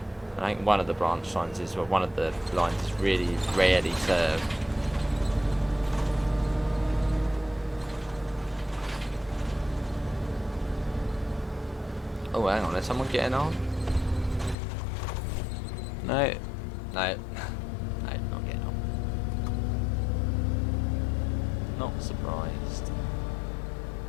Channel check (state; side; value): drops out; right; at 14.6 s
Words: And I think one of the branch lines is, well, one of the lines is really rarely served. Oh, hang on, there's someone getting on? No, no, no, not getting on. Not surprised.